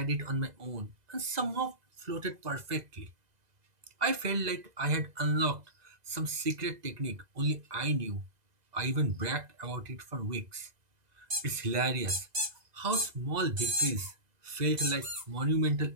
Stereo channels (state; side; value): late; left; 2.0 ms